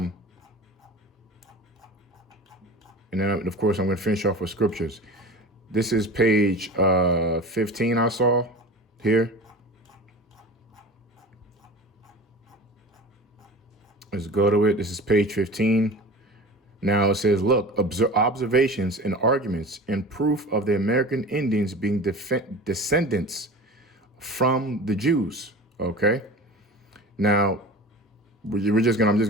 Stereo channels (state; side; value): normal; both; correlation 0.36